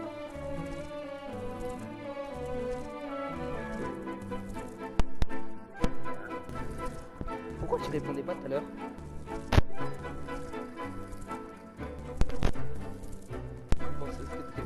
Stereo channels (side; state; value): both; identical; correlation 1.00